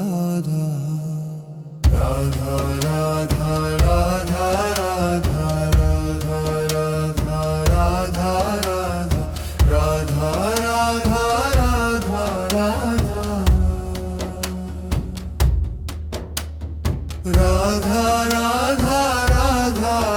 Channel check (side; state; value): both; identical; correlation 1.00